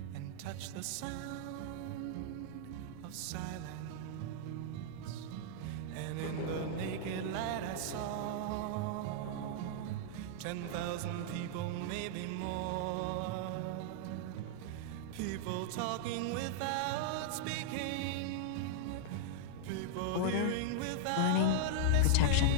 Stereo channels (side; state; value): both; different; correlation -0.01